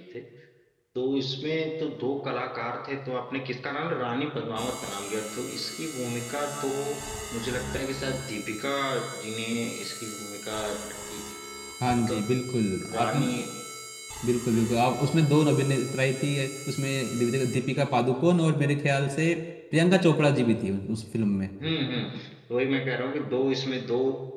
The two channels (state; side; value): identical; both; correlation 1.00